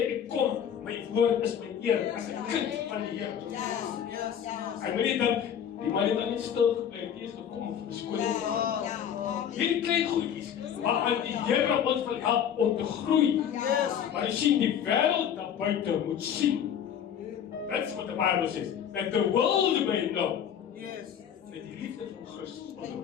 ek kom, my woord is my eer as 'n kind van die Here. Ek moet nie dink die man het dan net stil gebly, die is gekom om vir skool te gaan. Hierdie klein goedjies waaraan die Here ons wil help om te groei. Maar jy sien die wêreld daar buite moet sien. That's what the Bible says. That the world may know. Met die liefde van Christus.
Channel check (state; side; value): quieter; right; 8.8 dB